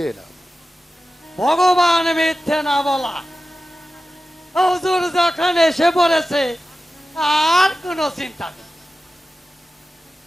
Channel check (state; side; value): normal; both; correlation 0.94